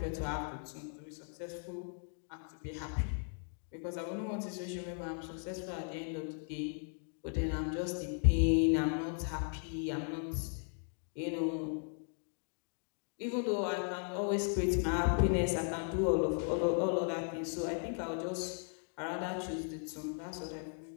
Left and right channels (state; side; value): silent; right; 53 dB below the other